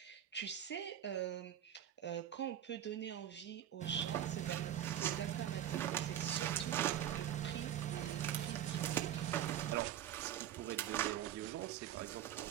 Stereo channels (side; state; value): left; quieter; 10.8 dB